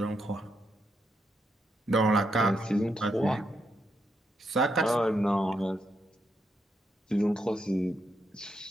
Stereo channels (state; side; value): normal; both; correlation 0.81